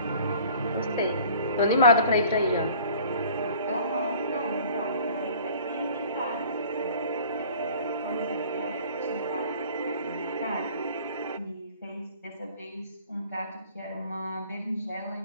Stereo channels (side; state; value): both; inverted; correlation -0.49